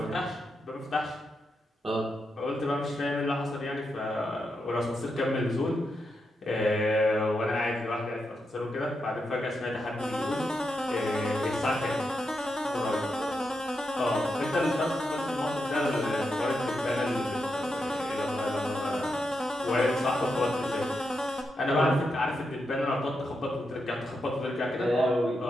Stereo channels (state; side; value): normal; both; correlation 0.85